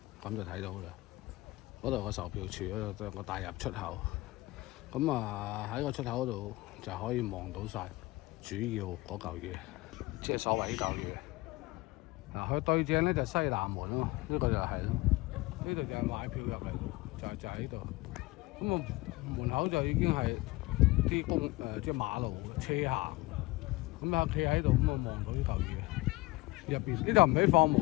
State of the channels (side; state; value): right; quieter; 21.0 dB